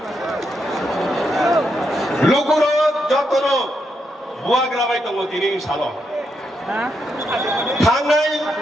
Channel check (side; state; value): both; normal; correlation 0.81